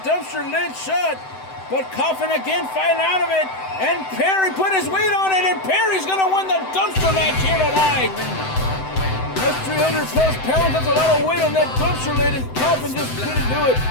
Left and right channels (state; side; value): late; right; 7.8 ms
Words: lid shut. But Coffin again fighting out of it. And Perry put his weight on it, and Perry's going to win the dumpster match here tonight. That's 300 plus pounds. That's a lot of weight on that dumpster lid, and Coffin just couldn't do it.